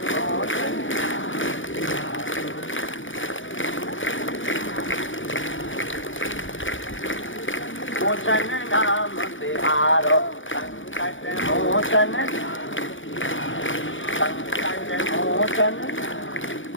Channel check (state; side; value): late; right; 0.56 ms